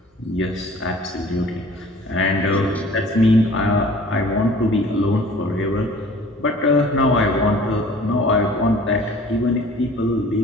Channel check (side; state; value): both; normal; correlation 0.48